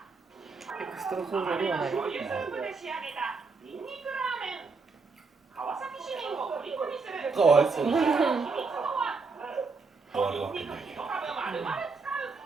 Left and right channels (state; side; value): quieter; left; 4.4 dB